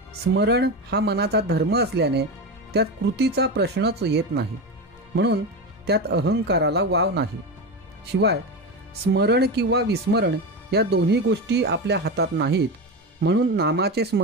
स्मरण हा मनाचा धर्म असल्याने त्यात कृतीचा प्रश्नच येत नाही, म्हणून त्यात अहंकाराला वाव नाही. शिवाय स्मरण किंवा विस्मरण या दोन्ही गोष्टी आपल्या हातात नाहीत, म्हणून नामाचे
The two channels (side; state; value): both; normal; correlation 0.20